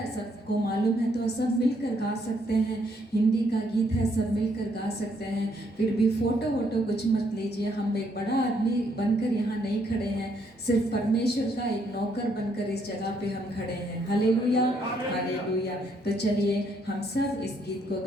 सबको मालूम है तो सब मिलकर गा सकते हैं। हिंदी का गीत है, सब मिलकर गा सकते हैं। फिर भी फ़ोटो वोटो कुछ मत लीजिए। हम एक बड़ा आदमी बनकर यहाँ नहीं खड़े हैं, सिर्फ परमेश्वर का एक नौकर बनकर इस जगह पे हम खड़े हैं। Hallelujah hallelujah. तो चलिए हम सब इस गीत को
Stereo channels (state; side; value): normal; both; correlation 0.71